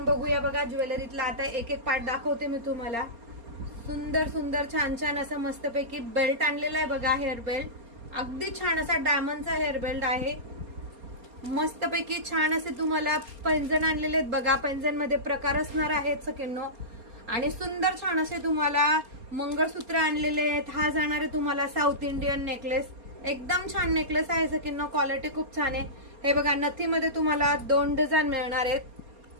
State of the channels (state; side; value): late; left; 4.3 ms